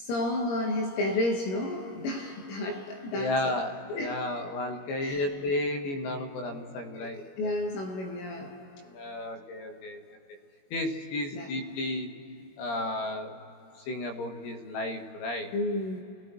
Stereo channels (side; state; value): right; late; 21 ms